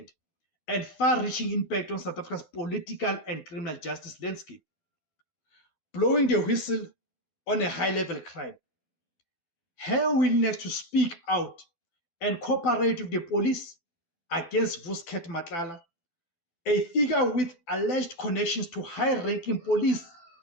and far-reaching impact on South Africa's political and criminal justice landscape, blowing the whistle on a high-level crime. Her willingness to speak out and cooperate with the police against Vusket Matlala, a figure with alleged connections to high-ranking police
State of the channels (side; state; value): right; late; 12 ms